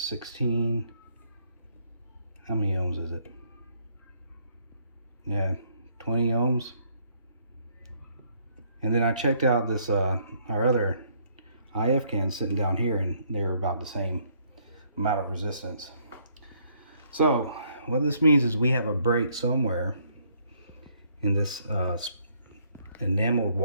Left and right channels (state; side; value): inverted; both; correlation -0.68